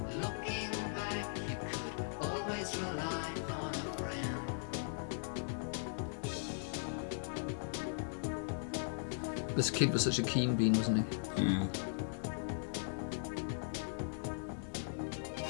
This kid was such a keen bean, wasn't he? Yeah.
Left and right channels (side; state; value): right; silent; digital silence